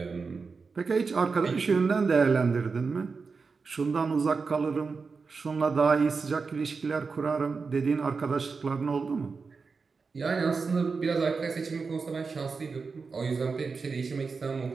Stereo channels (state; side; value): quieter; left; 4.8 dB